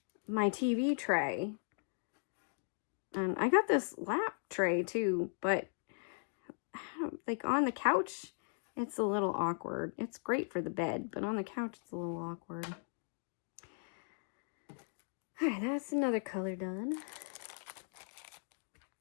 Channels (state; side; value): silent; right; digital silence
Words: my TV tray. And I got this lap tray too, but I don't, like on the couch, it's a little awkward. It's great for the bed, but on the couch, it's a little awkward. All right, that's another color done.